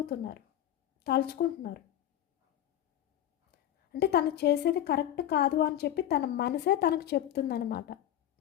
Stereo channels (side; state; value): right; quieter; 11.6 dB